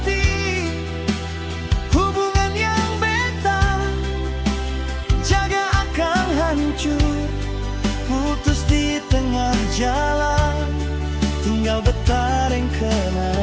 Hubungan yang beta jaga akan hancur, putus di tengah jalan. Tinggal bertaring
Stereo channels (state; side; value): identical; both; correlation 1.00